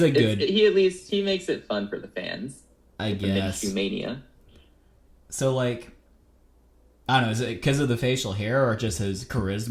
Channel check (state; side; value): identical; both; correlation 1.00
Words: a good. He makes it fun for the fans. I guess. Minshew Mania. So I don't know. Is it because of the facial hair, or just his